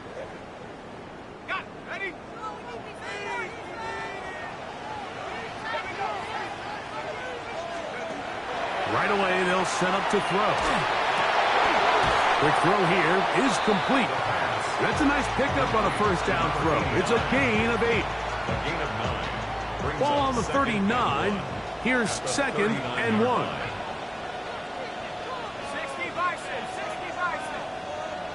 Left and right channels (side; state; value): both; identical; correlation 1.00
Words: Got it. Ready? Right away, they'll set up to throw. Quick throw here is complete. That's a nice pickup on a first down throw. It's a gain of 8. A gain of 9. Ball on the 39. Here's second and 1. 60 Bison. 60 Bison.